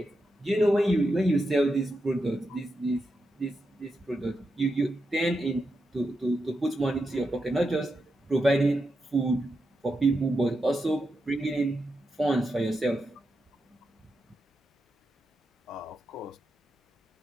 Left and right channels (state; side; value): normal; both; correlation 0.87